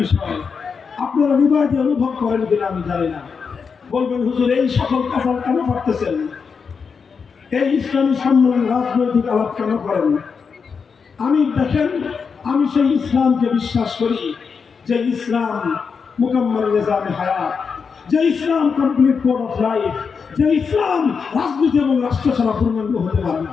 বিষয়। আপনারা হৃদয় দিয়ে অনুভব করেন কিনা আমি জানি না। বলবেন, হুজুর এই সকল কাজ কেন করতেছেন? এই ইসলামী সম্মেলন রাজনৈতিক আলাপ কেন করেন? আমি দেখেন, আমি সেই ইসলামকে বিশ্বাস করি যে ইসলাম মুকাম্মাল নিজামে হায়াত, যে ইসলাম কমপ্লিট কোড অফ লাইফ, যে ইসলাম রাজনীতি এবং রাষ্ট্র ছাড়া পূর্ণাঙ্গ হতে পারে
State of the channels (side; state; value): right; quieter; 5.7 dB